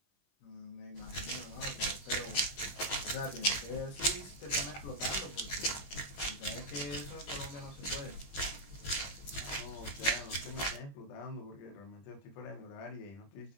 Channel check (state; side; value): late; right; 20 ms